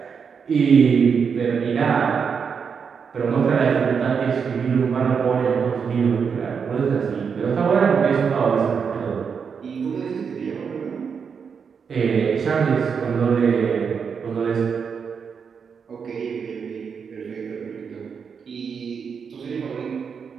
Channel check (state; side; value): quieter; left; 6.3 dB